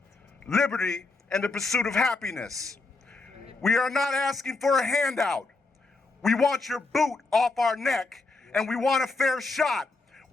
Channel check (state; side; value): quieter; right; 3.7 dB